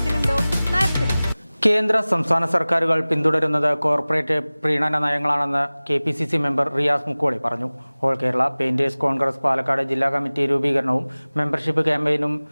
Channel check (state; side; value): inverted; both; correlation -0.99